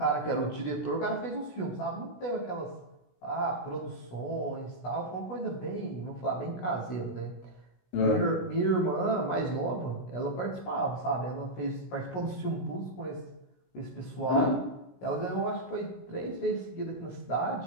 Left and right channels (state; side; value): late; right; 16 ms